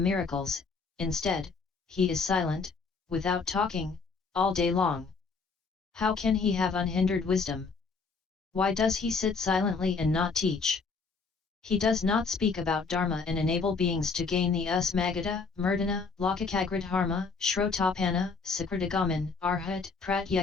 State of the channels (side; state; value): right; quieter; 4.6 dB